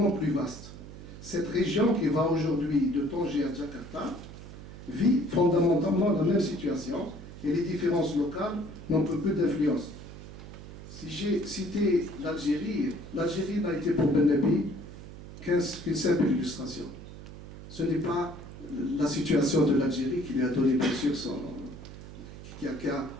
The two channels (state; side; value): noise; right; hum, 14 dB below the sound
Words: plus vaste. Cette région qui va aujourd'hui de Tanger à Jakarta vit fondamentalement la même situation et les différences locales n'ont que peu d'influence. Si j'ai cité l'Algérie, l'Algérie n'a été pour Ben-Nabi qu'une simple illustration. Ce n'est pas la situation de l'Algérie qui lui a donné, bien sûr, qui a